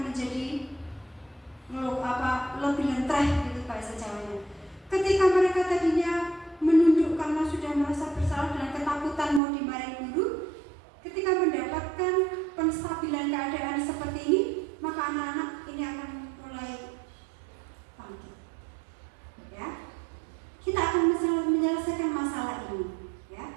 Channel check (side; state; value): left; drops out; at 9.4 s